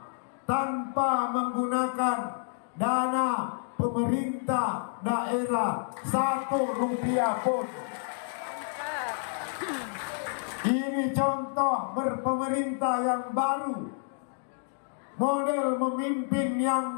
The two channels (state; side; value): silent; right; digital silence